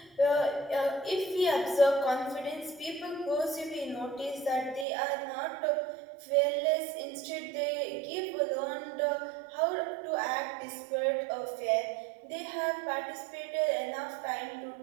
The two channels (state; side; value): drops out; left; at 4.9 s